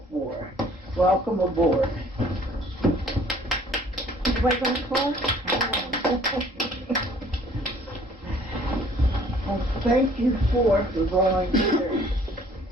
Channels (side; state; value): both; normal; correlation 0.56